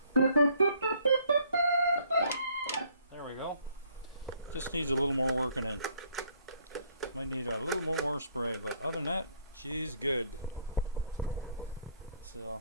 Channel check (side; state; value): both; inverted; correlation -0.64